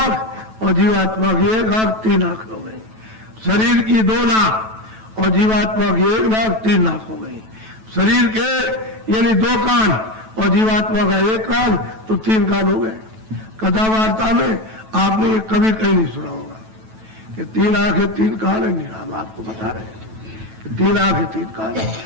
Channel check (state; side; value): late; left; 9.1 ms